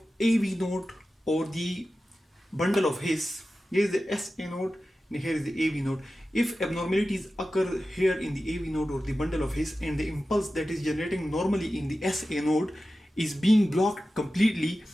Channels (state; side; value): normal; both; correlation 0.94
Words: AV node or the bundle of His, here is the SA node and here is the AV node. If abnormalities occur here in the AV node or the bundle of His and the impulse that is generating normally in the SA node is being blocked completely,